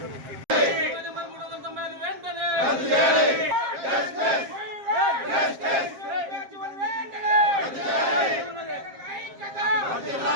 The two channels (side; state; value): left; late; 7.5 ms